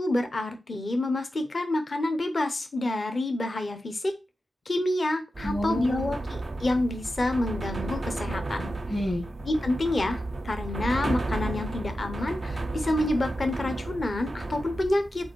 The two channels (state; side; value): normal; both; correlation 0.91